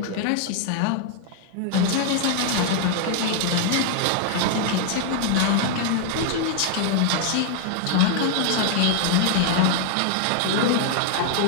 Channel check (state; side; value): different; both; correlation 0.00